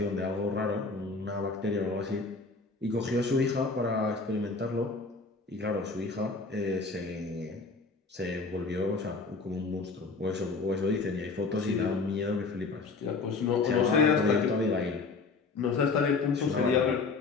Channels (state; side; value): quieter; right; 4.1 dB